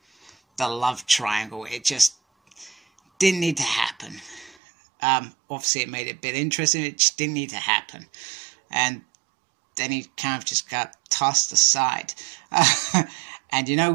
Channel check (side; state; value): left; drops out; at 4.5 s